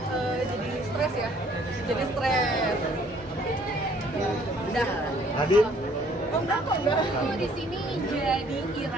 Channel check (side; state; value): both; normal; correlation 0.60